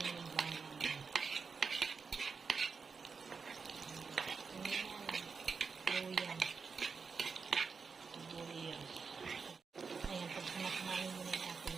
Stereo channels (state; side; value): quieter; left; 5.2 dB